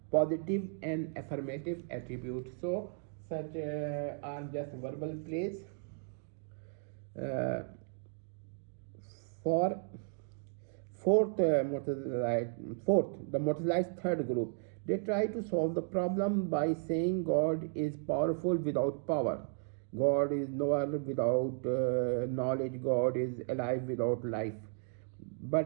positive and affirmative attribute. So such are just verbal plays. For the Māturīdī's third group, they try to solve the problem by saying God is powerful without power, God is knower without knowledge, God is alive without life.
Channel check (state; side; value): silent; left; 55 dB below the other